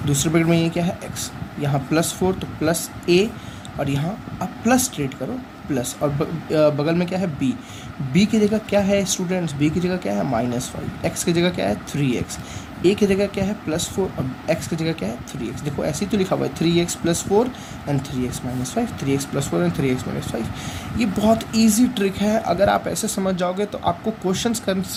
दूसरे ब्रैकेट में ये क्या है x, यहाँ +4 तो +a, और यहाँ आप प्लस ट्रेड करो प्लस, और बगल में क्या है b की जगह क्या है स्टूडेंट्स, b की जगह क्या है -5, x की जगह क्या है 3x, a की जगह क्या है +4 और x की जगह क्या है 3x। देखो ऐसे ही तो लिखा हुआ है 3x + 4 and 3x - 5, 3x + 4 and 3x - 5। ये बहुत इजी ट्रिक है, अगर आप ऐसे समझ जाओगे तो आपको क्वेश्चंस करने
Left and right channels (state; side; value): identical; both; correlation 1.00